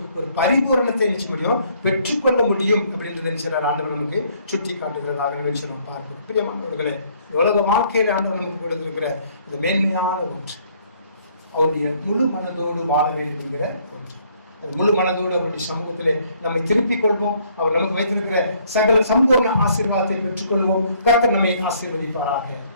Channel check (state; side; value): inverted; both; correlation -0.64